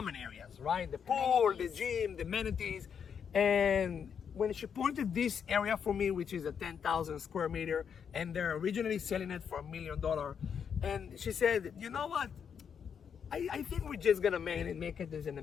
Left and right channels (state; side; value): quieter; right; 7.3 dB